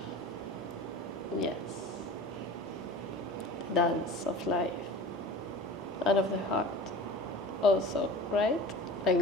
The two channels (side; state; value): both; normal; correlation 0.38